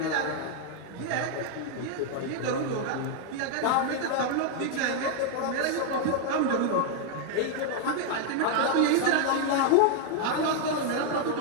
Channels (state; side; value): different; both; correlation 0.00